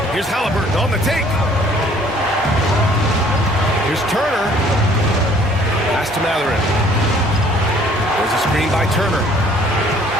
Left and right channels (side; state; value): both; normal; correlation 0.57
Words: Here's Halliburton on the take. Here's Turner. Pass to Mathurin. There's a screen by Turner.